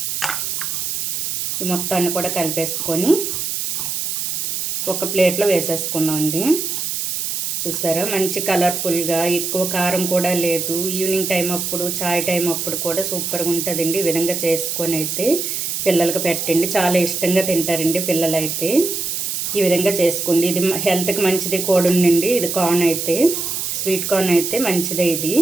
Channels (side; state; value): right; noise; hiss, 2 dB below the sound